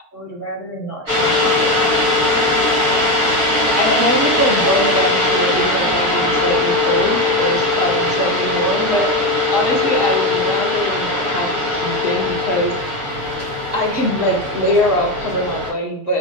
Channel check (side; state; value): left; late; 11 ms